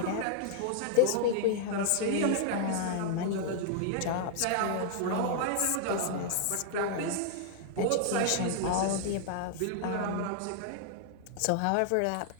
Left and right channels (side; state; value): both; different; correlation 0.00